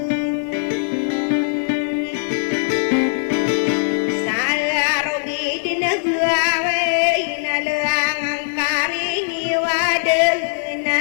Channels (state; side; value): silent; right; digital silence